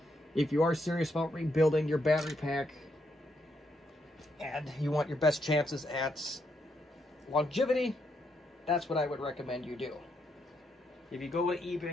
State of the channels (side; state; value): both; normal; correlation 0.78